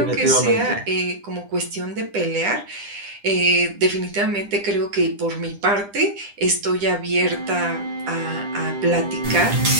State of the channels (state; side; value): late; left; 10 ms